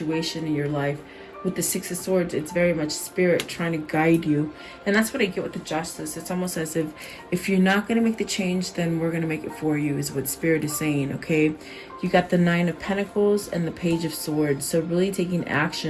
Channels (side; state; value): both; identical; correlation 1.00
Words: in your life. With the Six of Swords, it's very much spirit trying to guide you. And that's what I get with the Justice. It's almost as if you're not going to make the change, then we're going to make it for you, is what spirit is saying, okay? You got the Nine of Pentacles and the Page of Swords. So really taking